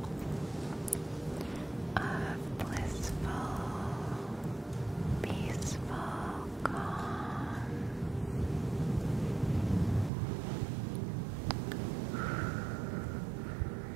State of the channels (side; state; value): left; drops out; at 10.1 s